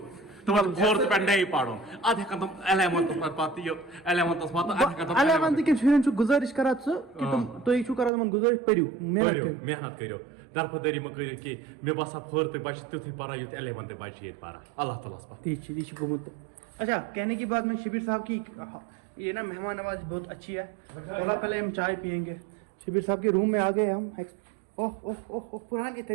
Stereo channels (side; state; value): left; drops out; at 8.1 s